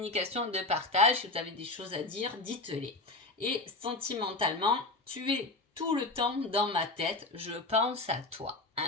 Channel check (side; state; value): right; quieter; 3.1 dB